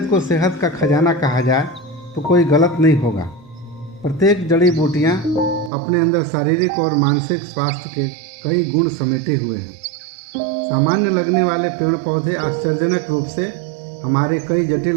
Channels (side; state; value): left; drops out; at 5.7 s